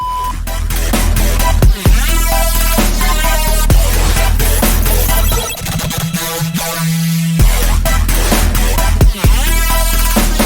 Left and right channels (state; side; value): identical; both; correlation 1.00